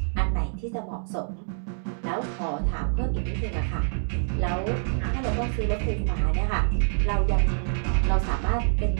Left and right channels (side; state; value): left; silent; digital silence